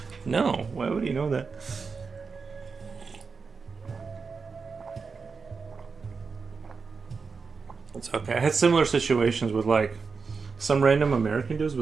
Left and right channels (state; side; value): quieter; left; 5.0 dB